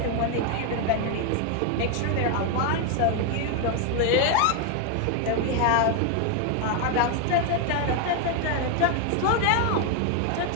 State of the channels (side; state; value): both; different; correlation 0.01